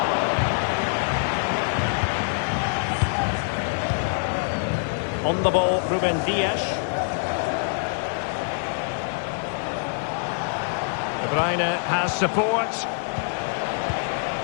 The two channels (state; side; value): silent; right; 62 dB below the other